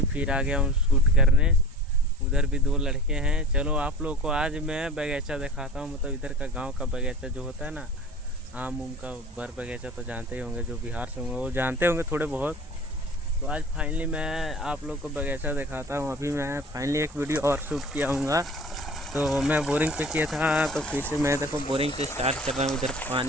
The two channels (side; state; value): both; normal; correlation 0.40